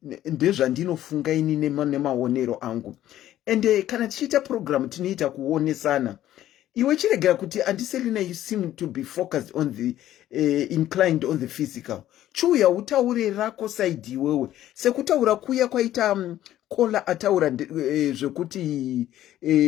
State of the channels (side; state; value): right; quieter; 13.0 dB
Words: ndezvandinofunga ini nemaonero angu. And kana tichiita program tinoita kuonesana. Iwe chiregera kuti andiselina, you seem to be focused on the inclined on the physical. Chuya utaure rako side iwewe. Sekutaura kuya kwaita kola ataura zvekuti